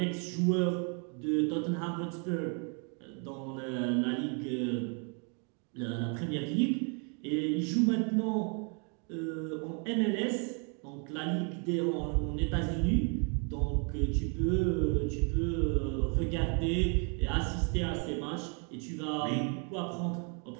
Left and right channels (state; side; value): quieter; left; 37.8 dB